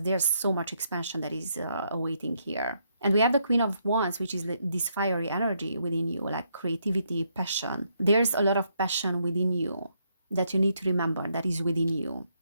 there's so much expansion that is awaiting here. And we have the Queen of Wands, which is this fiery energy within you, like creativity, passion. There's a lot of passion within you that you need to remember that is within you.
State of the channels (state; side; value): inverted; both; correlation -0.75